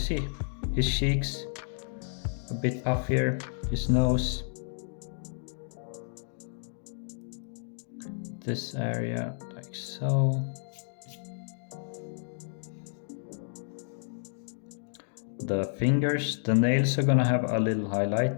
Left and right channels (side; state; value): right; silent; digital silence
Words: his cheeks a bit puffier, his nose, this area like so. The fingers, the nails are gonna have a little